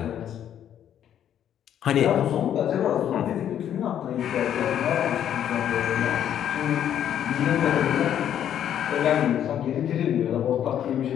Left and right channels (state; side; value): quieter; right; 10.1 dB